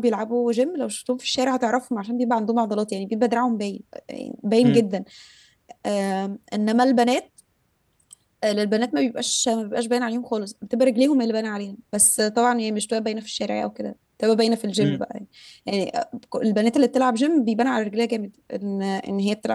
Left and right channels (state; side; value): identical; both; correlation 1.00